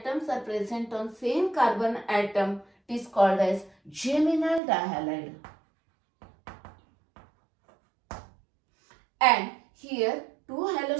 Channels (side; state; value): left; drops out; at 4.6 s